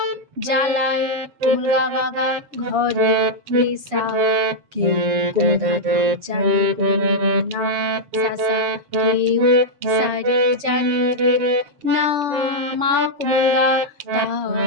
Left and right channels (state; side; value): late; left; 7.0 ms